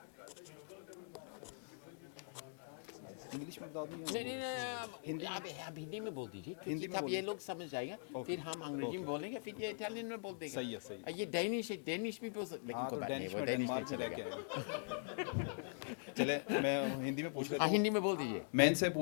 English में बता दूं नहीं हिंदी. आप हिंदी में बोल दीजिए, क्योंकि तब ये लोग समझ जाएगा. फिर हम अंग्रेजी में बोलेंगे, फिर ये इटालियन में बोल देगा. सही है. ये डेनिश भी बोल सकते, लेकिन कोई बात नहीं, वो डेनिश में चलेगा. चले मैं हिंदी में पूछ लेता हूं. हिंदी में बोल दीजिए. मैं इनसे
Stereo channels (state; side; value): silent; right; digital silence